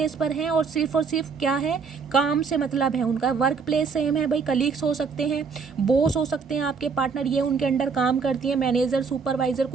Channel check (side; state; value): left; quieter; 5.4 dB